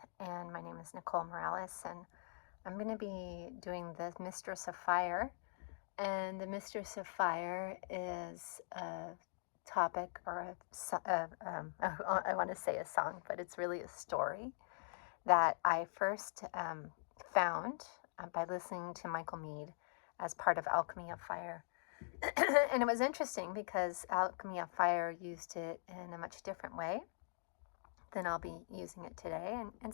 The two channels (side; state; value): right; silent; digital silence